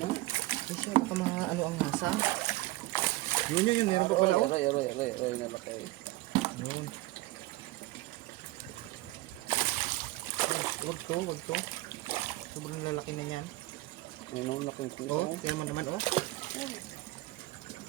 Ay, siya, baka mga ano ang nasa. Yun, meron pa pala, oh. Aroy, na laki. Yun. Wag to. Sobrang lalaki na yan. Ayun, laking piso. Oh, tingnan mo naman, oh.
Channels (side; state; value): left; quieter; 19.3 dB